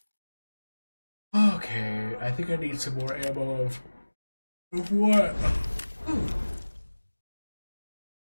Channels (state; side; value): inverted; both; correlation -1.00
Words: Okay, I think I need some more ammo of what? Ooh.